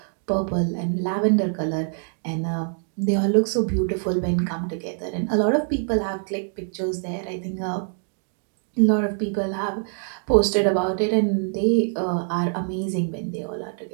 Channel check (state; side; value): silent; left; 62 dB below the other